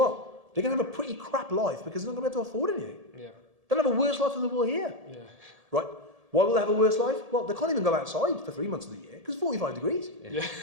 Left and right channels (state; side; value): late; left; 1.7 ms